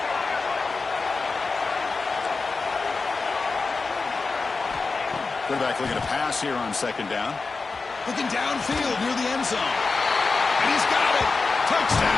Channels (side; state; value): right; quieter; 4.2 dB